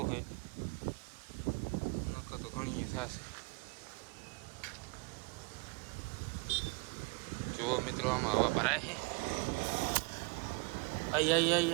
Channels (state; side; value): quieter; left; 28.8 dB